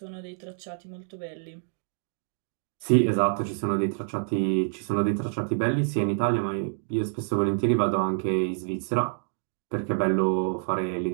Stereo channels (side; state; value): left; silent; digital silence